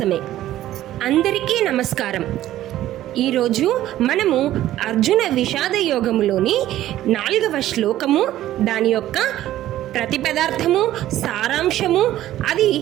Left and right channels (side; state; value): left; quieter; 13.6 dB